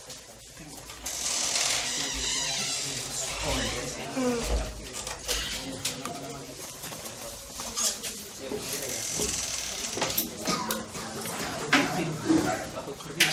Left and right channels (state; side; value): identical; both; correlation 1.00